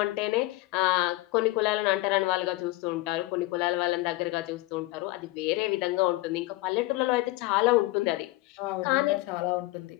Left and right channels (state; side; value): quieter; right; 20.1 dB